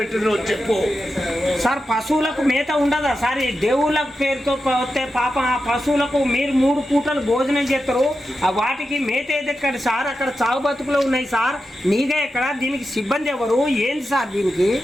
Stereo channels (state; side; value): normal; both; correlation 0.90